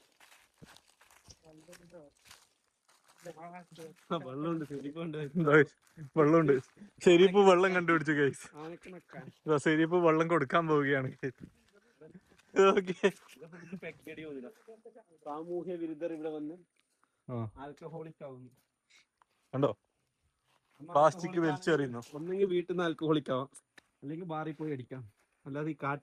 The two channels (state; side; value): identical; both; correlation 1.00